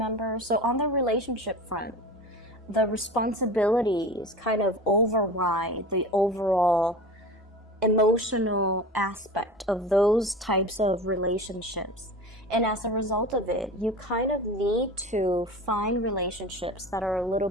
So on the relationship front, the responsibilities kind of override the overall emotional aspect of those types of relationships. And as a result of it, you kind of need to find relationships that are a little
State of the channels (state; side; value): normal; both; correlation 0.34